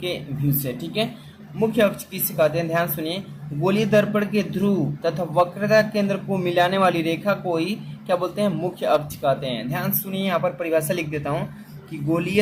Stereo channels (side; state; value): both; identical; correlation 1.00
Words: व्यू से। ठीक है, मुख्य अक्ष किससे कहते हैं, ध्यान सुनिए। गोलीय दर्पण के ध्रुव तथा वक्रता केंद्र को मिलाने वाली रेखा को ही क्या बोलते हैं, मुख्य अक्ष कहते हैं। ध्यान सुनिए, यहाँ पर परिभाषा लिख देता हूँ कि